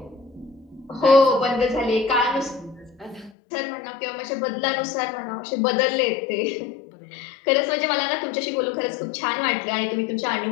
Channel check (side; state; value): right; drops out; at 3.3 s